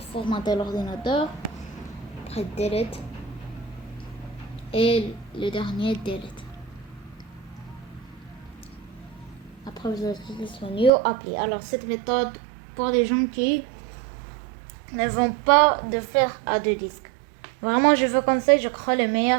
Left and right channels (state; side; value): drops out; left; at 10.9 s